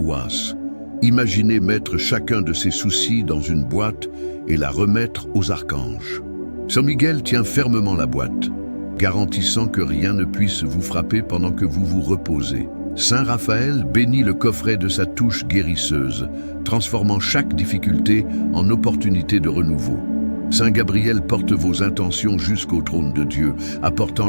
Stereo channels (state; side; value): inverted; both; correlation -1.00